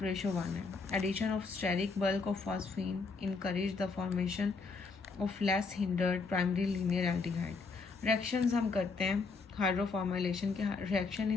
है। Addition of steric bulk of phosphine encourage the formation of less hindered primary linear aldehyde. Reactions हम करते हैं hydroformylation के, reaction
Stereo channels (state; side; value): quieter; right; 4.4 dB